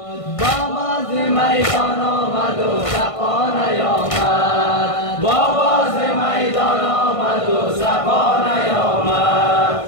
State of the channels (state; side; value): late; right; 1.5 ms